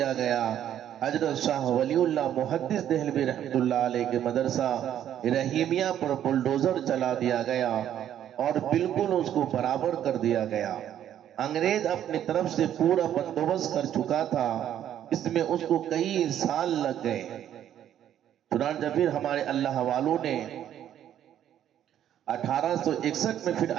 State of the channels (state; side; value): quieter; left; 10.7 dB